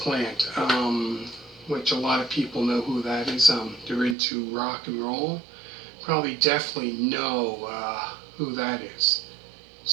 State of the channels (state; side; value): drops out; left; at 4.2 s